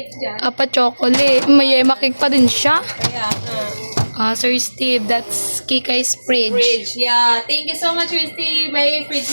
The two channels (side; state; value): both; inverted; correlation -1.00